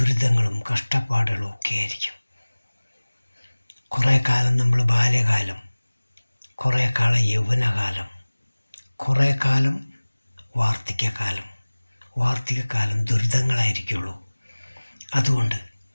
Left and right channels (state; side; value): inverted; both; correlation -1.00